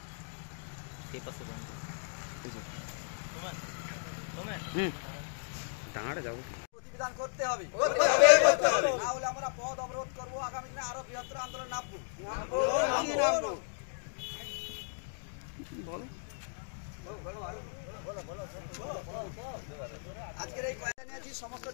সেই পাশে টাঙাড়ে যাবো। প্রতিবিধান করতে হবে, না হলে আমরা পথ অবরোধ করবো, আগামী দিনে আরো বৃহত্তর আন্দোলন নামবো। আজকের এই জানিয়েছি, সমস্ত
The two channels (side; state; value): right; silent; digital silence